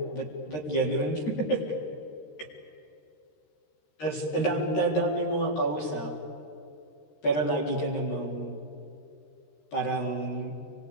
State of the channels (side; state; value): right; late; 13 ms